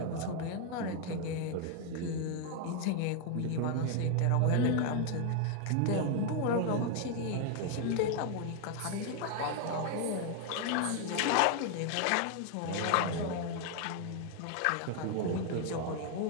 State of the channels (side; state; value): both; different; correlation 0.01